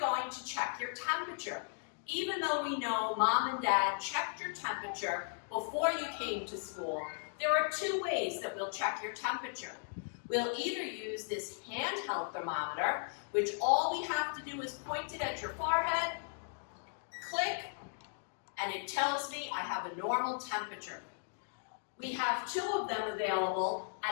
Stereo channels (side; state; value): right; silent; digital silence